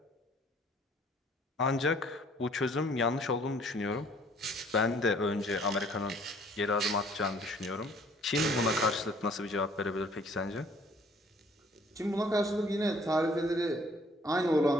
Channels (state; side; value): normal; both; correlation 0.58